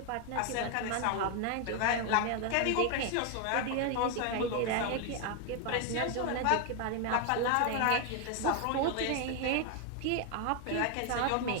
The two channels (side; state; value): both; different; correlation 0.00